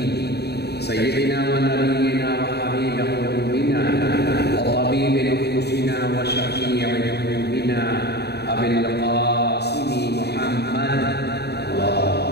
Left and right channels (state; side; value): late; right; 0.48 ms